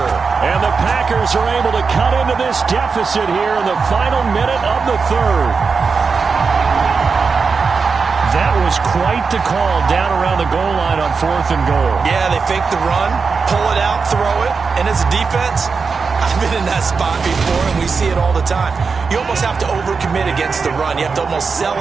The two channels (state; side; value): quieter; left; 5.0 dB